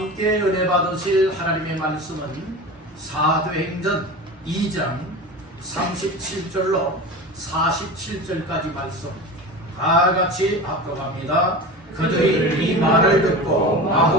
은혜 받으실 하나님의 말씀은 사도행전 2장 37절로 47절까지 말씀 다 같이 합독합니다. 그들이 이 말을 듣고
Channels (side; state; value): both; normal; correlation 0.30